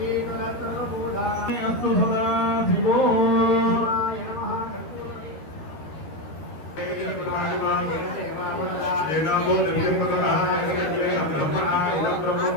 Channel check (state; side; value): late; right; 13 ms